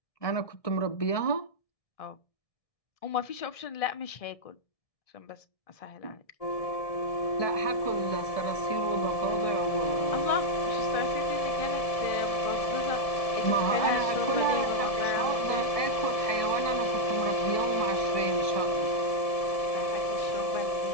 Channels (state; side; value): late; right; 1.6 ms